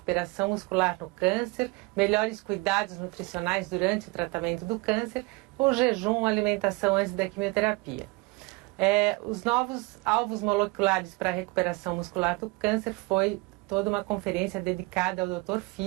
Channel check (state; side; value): quieter; left; 25.3 dB